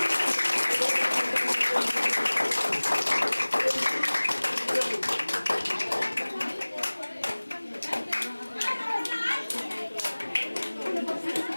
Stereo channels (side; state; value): both; inverted; correlation -1.00